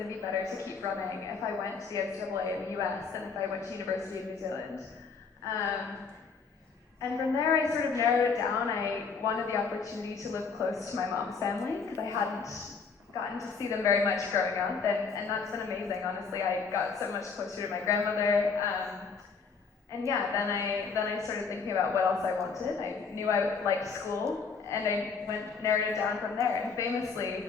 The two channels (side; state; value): right; quieter; 5.2 dB